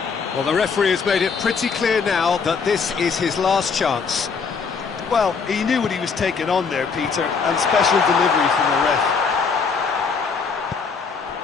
Well, the referee has made it pretty clear now that this is his last chance. Well, he knew what he was taking on there, Peter, and special delivery from the ref.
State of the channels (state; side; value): quieter; right; 5.4 dB